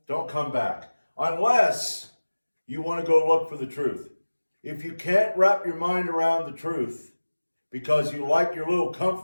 Don't come back. Unless you want to go look for the truth. If you can't wrap your mind around the truth because you like your little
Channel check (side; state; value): both; inverted; correlation -1.00